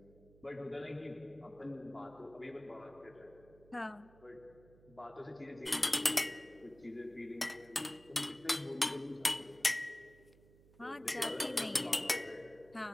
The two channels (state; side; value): noise; right; hum, 24 dB below the sound